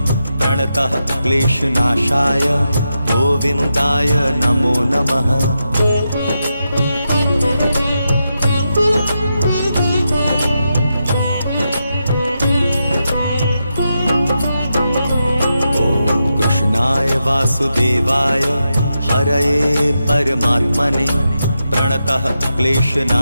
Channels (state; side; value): inverted; both; correlation -0.87